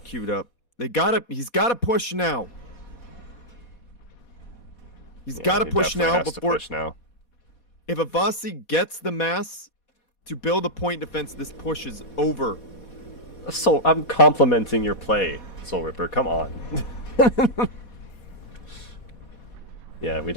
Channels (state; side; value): late; right; 4.2 ms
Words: queued up. He's gotta push now. He's gotta push now before. If Avasi gets the mass to build a point defense, this push is over. So I'm complimenting your play, Soul Ripper. Come on. Yeah, we